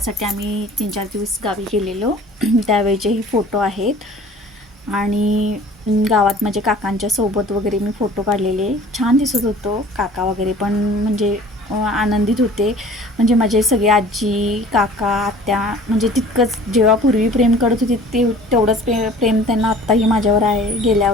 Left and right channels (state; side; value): normal; both; correlation 0.47